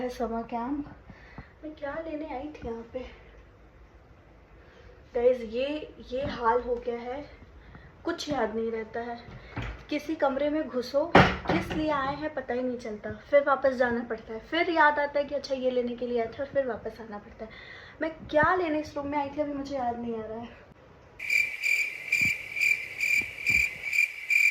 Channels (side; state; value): both; identical; correlation 1.00